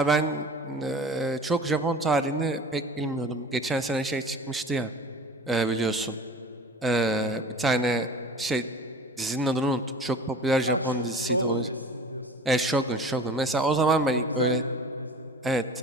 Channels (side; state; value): both; normal; correlation 0.40